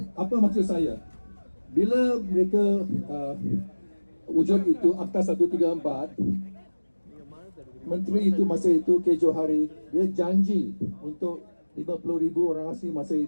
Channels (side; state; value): both; inverted; correlation -1.00